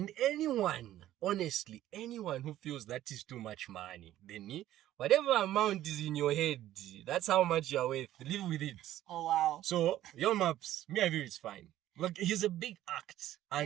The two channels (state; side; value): quieter; left; 13.4 dB